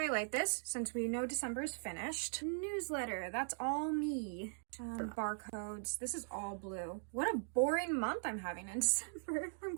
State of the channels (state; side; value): silent; left; digital silence